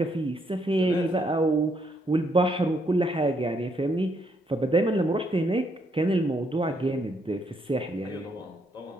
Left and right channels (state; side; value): normal; both; correlation 0.73